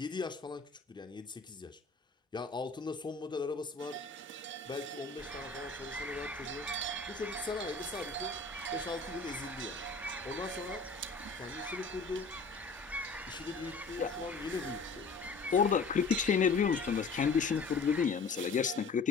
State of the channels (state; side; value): quieter; right; 4.2 dB